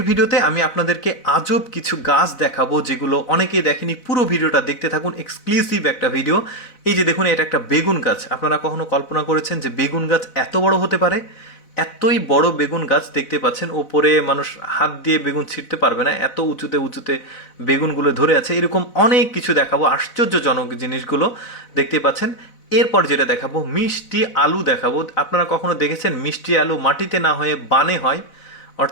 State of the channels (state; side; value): late; right; 4.0 ms